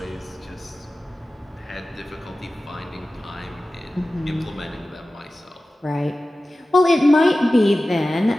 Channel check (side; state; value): both; normal; correlation 0.96